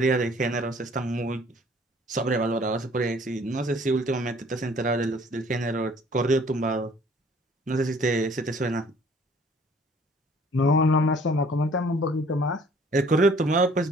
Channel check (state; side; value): normal; both; correlation 0.56